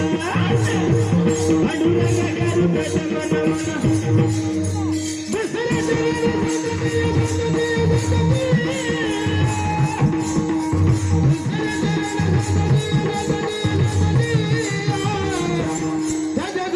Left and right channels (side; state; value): both; identical; correlation 1.00